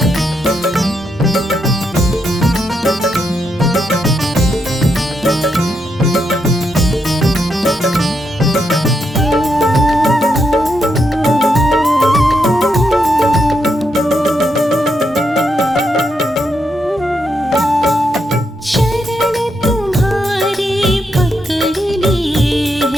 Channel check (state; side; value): normal; both; correlation 0.81